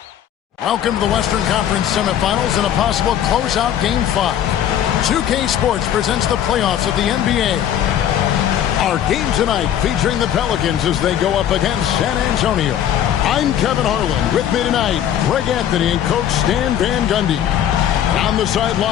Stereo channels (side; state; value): right; quieter; 10.4 dB